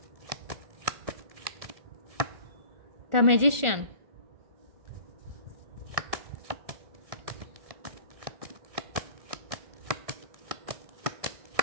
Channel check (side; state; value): left; late; 1.4 ms